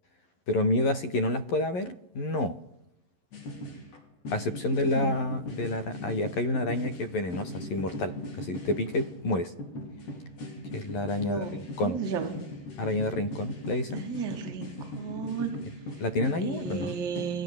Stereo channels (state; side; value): late; right; 11 ms